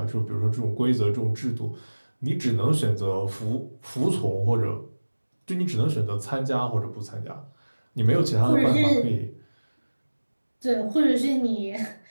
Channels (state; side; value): inverted; both; correlation -1.00